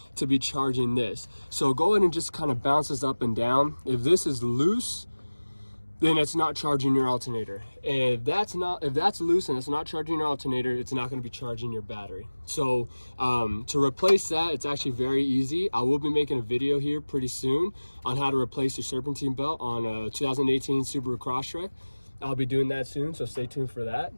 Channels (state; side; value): inverted; both; correlation -1.00